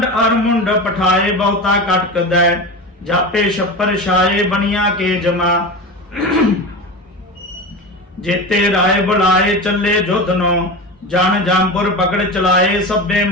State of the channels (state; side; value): normal; both; correlation 0.26